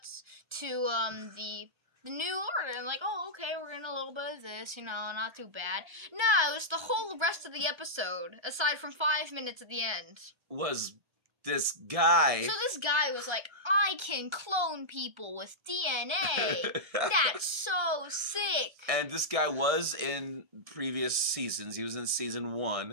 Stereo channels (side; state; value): left; late; 1.3 ms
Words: to the New Order, and like, oh, okay, we're getting a little bit of this, not too bad. No, it was the whole rest of the episode, aside from 5 minutes at the end. Was this guy. So this guy was like, I can clone people with DNA. That's so sick. And this guy was in previous seasons. He was in season